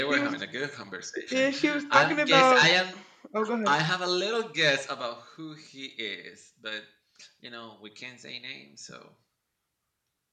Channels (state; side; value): identical; both; correlation 1.00